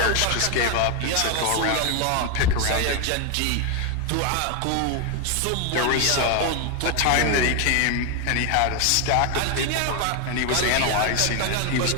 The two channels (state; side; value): different; both; correlation 0.01